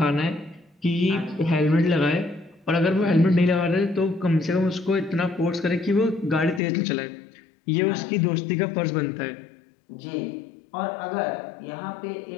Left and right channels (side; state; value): right; drops out; at 6.6 s